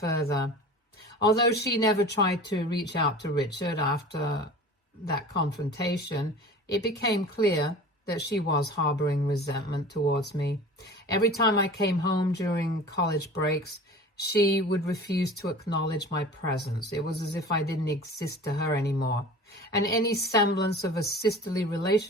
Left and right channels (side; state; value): both; normal; correlation 0.39